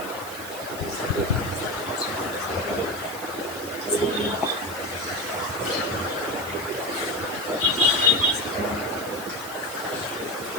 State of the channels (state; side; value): noise; right; hiss, 13 dB below the sound